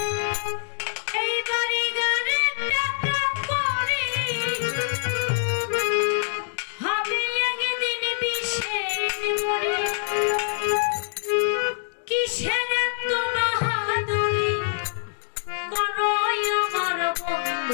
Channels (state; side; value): silent; right; digital silence